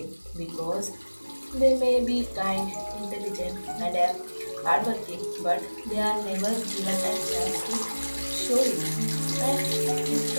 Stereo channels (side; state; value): both; inverted; correlation -1.00